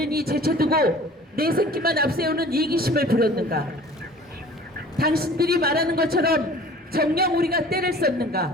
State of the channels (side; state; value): both; normal; correlation 0.46